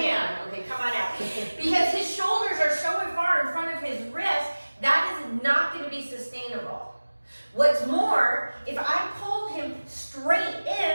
Okay, come on out. Because his shoulders are so far in front of his wrist, that is not gonna be sustainable. What's more, if I pull him straight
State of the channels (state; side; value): inverted; both; correlation -1.00